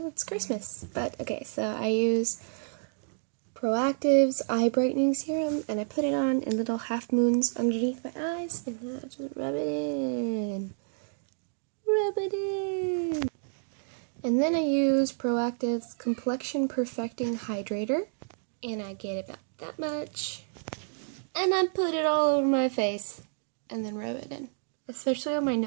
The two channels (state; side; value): silent; left; digital silence